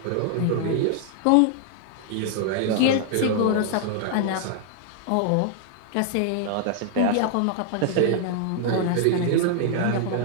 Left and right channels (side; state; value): both; different; correlation 0.00